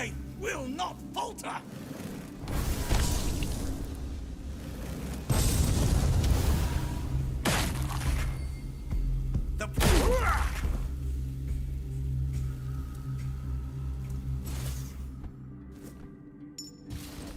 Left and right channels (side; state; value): both; identical; correlation 1.00